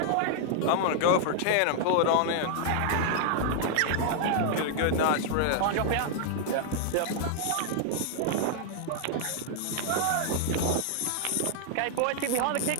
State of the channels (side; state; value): both; different; correlation -0.01